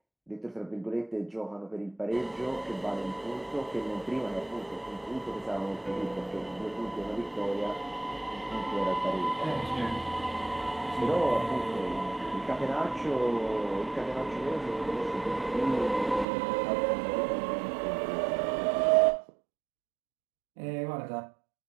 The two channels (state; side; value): drops out; left; at 16.2 s